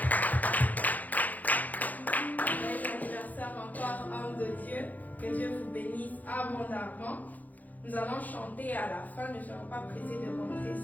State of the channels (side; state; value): right; late; 0.080 ms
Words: l'anniversaire encore, homme de Dieu. Que Dieu vous bénisse abondamment. Nous allons chanter à la fin. Ne soyons pas pressés de rentrer,